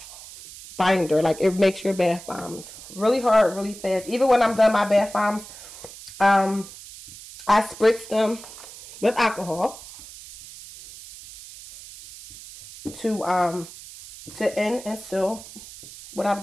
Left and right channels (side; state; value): right; noise; hiss, 16 dB below the sound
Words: binder. Like it makes your bath bombs really hard, really fast. Even when I'm done my bath bombs, I spritz them with alcohol to end and seal what